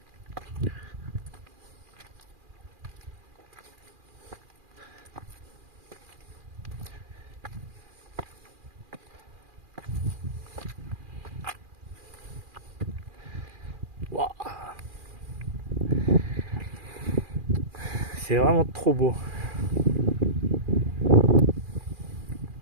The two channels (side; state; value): left; late; 2.4 ms